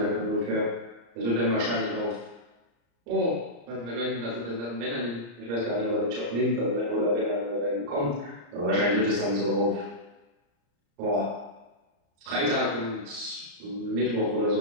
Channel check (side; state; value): left; late; 34 ms